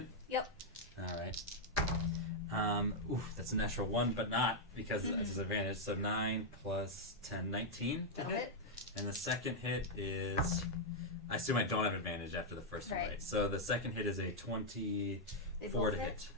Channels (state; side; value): normal; both; correlation -0.03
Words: Yep. All right. That's a natural 1, but not because it's disadvantage. So 9 plus 10, 19 to That'll hit. hit. And the second hit is, I assume I don't have advantage after the first one, Right. right? So the second hit is a They 24 both to hit.